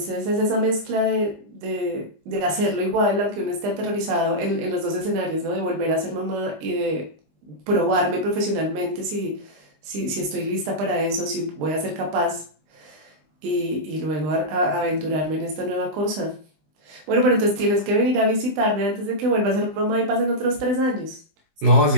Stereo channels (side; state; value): left; late; 20 ms